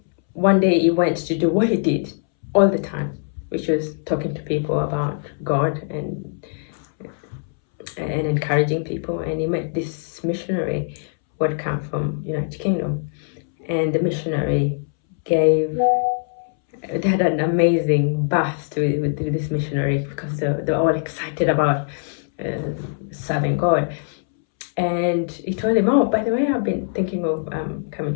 one day he went to do what he did all the time, which was talking to people about God and encouraging people. And he met this missionary who had come from United Kingdom, and the missionary gave they had an amazing burst with this missionary because they were all excited about serving God. And he told him, oh, by the way, I've been thinking of coming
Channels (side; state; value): right; silent; 64 dB below the other